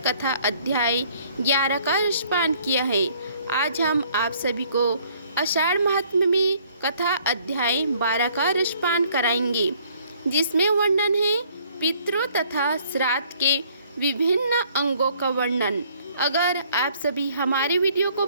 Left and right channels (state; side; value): inverted; both; correlation -0.61